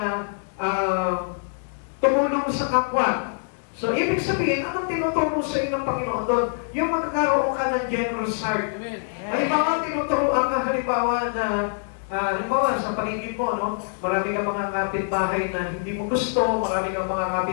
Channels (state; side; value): silent; right; digital silence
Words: tumulong sa kapwa. So, ibig sabihin, anong tinuturo sa iyo ng Panginoon doon? Yung magkakaroon ka ng generous heart. Halimbawa, tinuturuan ka halimbawa na halimbawa, sa paligid mo, no? Marami kang mga kapitbahay na hindi mo gusto, marami kang mga